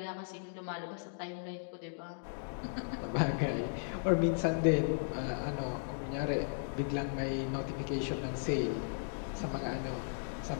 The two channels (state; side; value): silent; right; digital silence